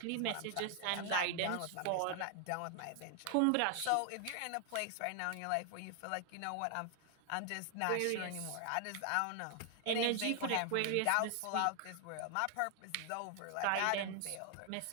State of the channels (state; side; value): different; both; correlation 0.00